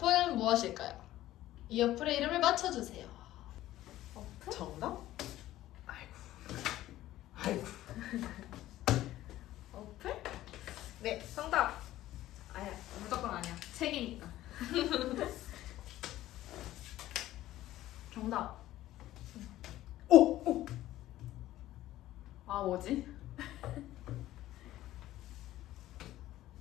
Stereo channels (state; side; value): quieter; right; 14.7 dB